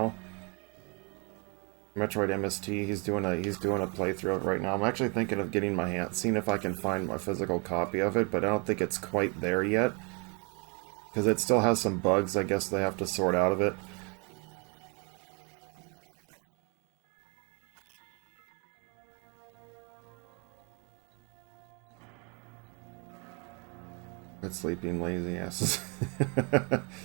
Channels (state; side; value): quieter; left; 33.4 dB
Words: Metroid MST, he's doing a playthrough of it right now. I'm actually thinking of getting my hand, seeing if I can find my physical copy of it, but I don't think it's quite there yet. Because it still has some bugs, I guess they have to sort out of it. Good sleeping lazy asses.